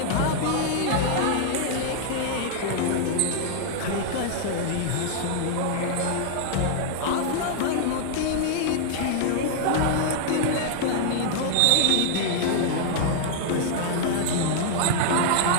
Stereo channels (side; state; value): both; different; correlation -0.01